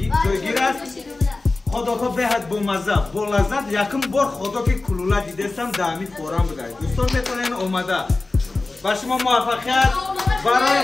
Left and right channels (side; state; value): right; quieter; 3.4 dB